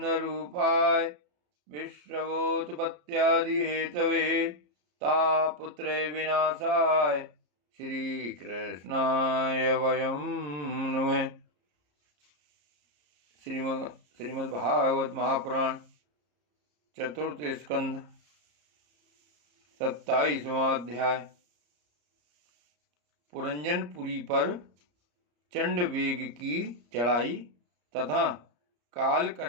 विश्वोत्पत्त्यादिहेतवे तापत्रय विनाशाय श्रीकृष्णाय वयं नुमः। श्रीमद्भागवत महापुराण चतुर्थ स्कंध 27वां अध्याय। पुरंजनपुरी पर चंडवेग की चढ़ाई तथा काल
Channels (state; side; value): late; left; 34 ms